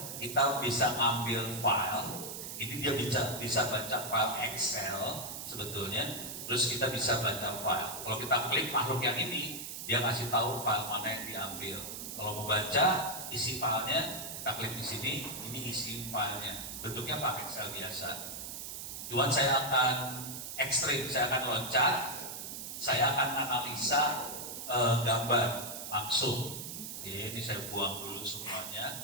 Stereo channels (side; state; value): right; noise; hiss, 7 dB below the sound